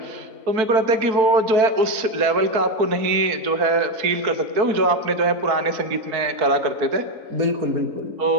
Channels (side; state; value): left; late; 4.5 ms